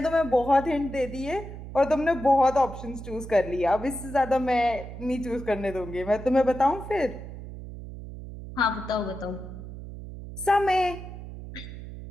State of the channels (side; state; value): right; noise; hum, 11 dB below the sound